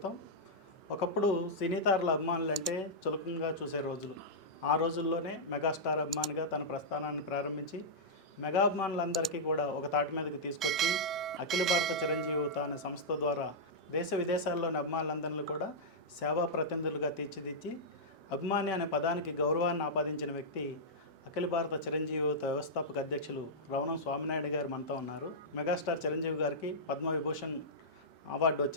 ఒకప్పుడు సినీ తారల అభిమానులు అంటే చులకంగా చూసే రోజులు. ఆ రోజుల్లోనే మెగాస్టార్ అభిమానిగా తన ప్రస్థానాన్ని ప్రారంభించి మెగా అభిమానులందరికీ కూడా ఒక తాటి మీదకి తీసుకొచ్చి అఖిల భారత చిరంజీవి యువత అనే సంస్థ ద్వారా దేశ విదేశాల్లోని అభిమానులందరినీ కూడా సేవా ప్రతినిధులుగా తీర్చిదిద్ది అభిమాని అనే పదానికి గౌరవాన్ని ఆపాదించిన వ్యక్తి అఖిల భారత చిరంజీవి యువత వ్యవస్థాపక అధ్యక్షులు రవణం స్వామినాయుడు గారు మనతో ఉన్నారు. మెగాస్టార్ చిరంజీవి గారికి పద్మవిభూషణ్ అవార్డు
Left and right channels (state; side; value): normal; both; correlation -0.10